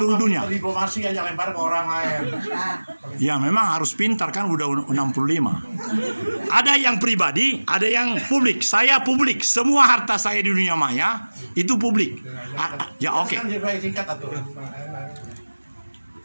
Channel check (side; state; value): both; inverted; correlation -1.00